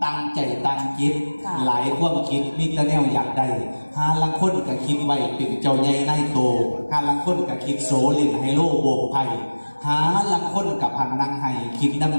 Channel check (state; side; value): inverted; both; correlation -1.00